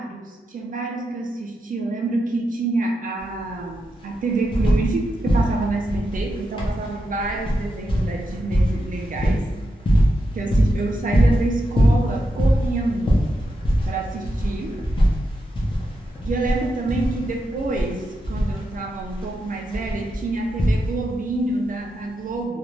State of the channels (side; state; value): both; normal; correlation 0.86